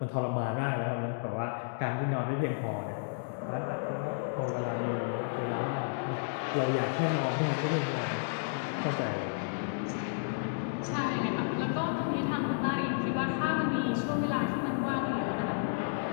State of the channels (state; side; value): silent; right; digital silence